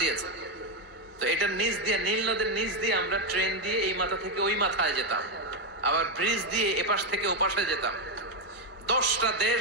দিয়েছেন। তো এটার নিচ দিয়ে, নীল নদের নিচ দিয়ে আমরা ট্রেন দিয়ে এই মাথা থেকে ওই মাথায় যেতাম, আবার ব্রিজ দিয়ে এপাশ থেকে ওপাশে যেতাম। 10টা দেশ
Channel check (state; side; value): normal; both; correlation 0.05